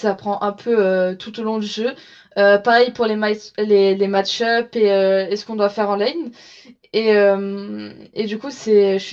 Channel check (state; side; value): identical; both; correlation 1.00